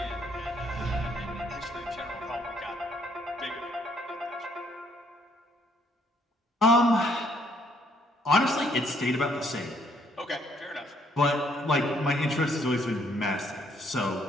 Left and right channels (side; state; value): both; normal; correlation 0.68